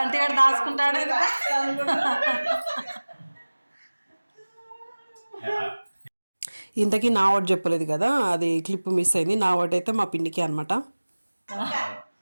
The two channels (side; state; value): both; inverted; correlation -1.00